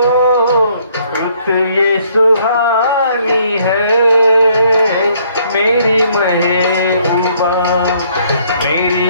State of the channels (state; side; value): inverted; both; correlation -0.65